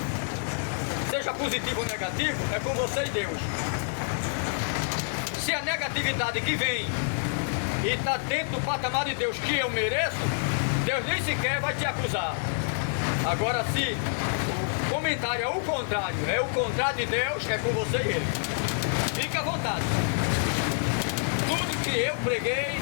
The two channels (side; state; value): right; silent; digital silence